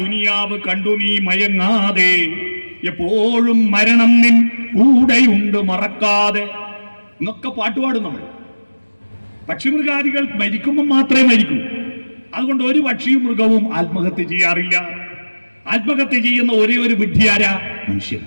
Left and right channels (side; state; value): both; inverted; correlation -1.00